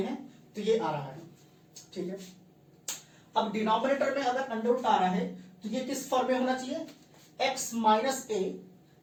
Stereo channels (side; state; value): both; identical; correlation 1.00